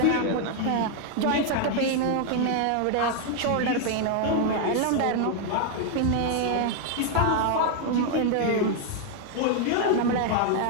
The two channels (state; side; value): different; both; correlation 0.00